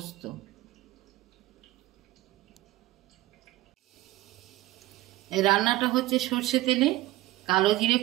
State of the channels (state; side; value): quieter; left; 17.4 dB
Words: এই রান্নাটা হচ্ছে সর্ষে তেলে, কালো জিরে